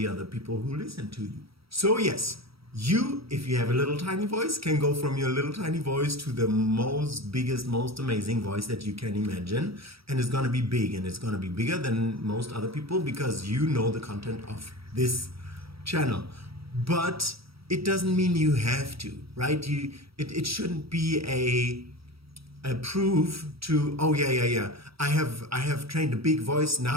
other people who listen to you. So yes, you, if you have a little tiny voice, can go from your little tiny voice to the biggest, most amazing voice that you can imagine. And it's going to be big, and it's going to be bigger than most other people because you know the content of this channel. But it doesn't mean you have to, right? It shouldn't be a proof to, oh yeah, I have trained a big voice,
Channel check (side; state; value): left; late; 0.76 ms